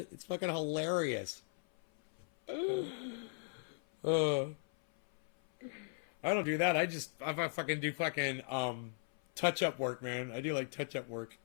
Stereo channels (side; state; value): right; silent; 53 dB below the other